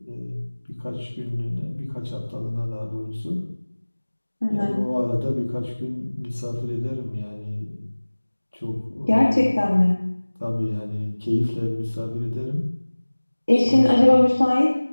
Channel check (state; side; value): inverted; both; correlation -1.00